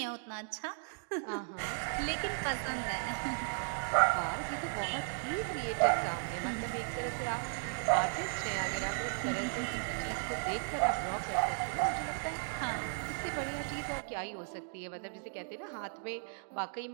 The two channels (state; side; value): silent; left; digital silence